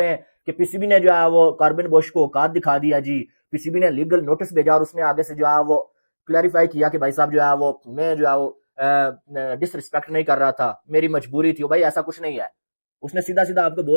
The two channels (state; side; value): inverted; both; correlation -1.00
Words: हैं कि पीसीबी ने जो है वो कॉर्बिन बोश को औकात दिखा दिया जी, पीसीबी ने लीगल नोटिस भेजा और उसने आगे से जो है वो क्लैरिफाई किया कि भाई साहब जो है वो मैं जो है वो डिसरिस्पेक्ट नहीं कर रहा था, मेरी मजबूरी थी। भाई ऐसा कुछ नहीं है, उसने सीधा सीधा आपको